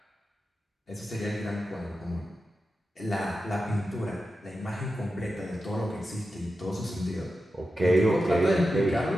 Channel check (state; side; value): normal; both; correlation 0.91